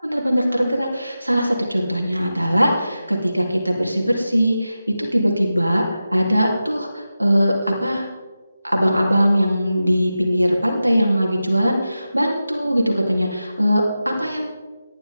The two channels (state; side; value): inverted; both; correlation -0.92